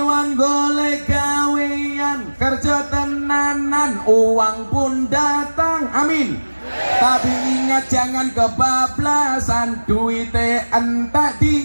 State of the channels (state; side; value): inverted; both; correlation -1.00